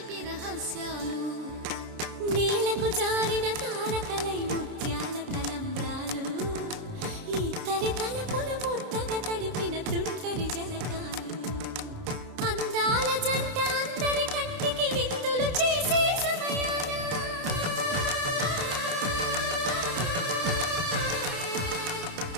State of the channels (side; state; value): left; late; 29 ms